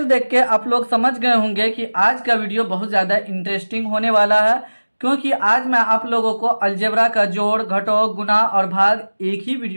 देख के आप लोग समझ गए होंगे कि आज का वीडियो बहुत ज़्यादा इंटरेस्टिंग होने वाला है। क्योंकि आज मैं आप लोगों को अलजेब्रा का जोड़, घटाव, गुणा और भाग एक ही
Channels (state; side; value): inverted; both; correlation -1.00